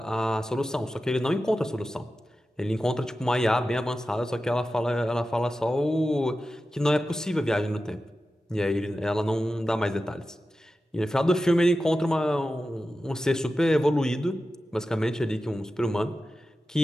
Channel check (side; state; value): both; normal; correlation 0.93